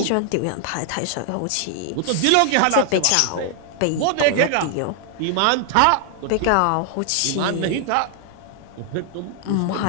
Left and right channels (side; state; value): both; different; correlation 0.00